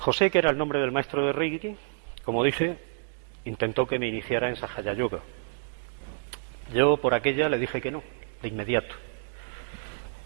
que era el nombre del maestro de Reiki, como dije, intentó que me iniciara en Sahaya Yoga. Yo por aquella le dije que no, de inmediato.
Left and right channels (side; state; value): left; silent; digital silence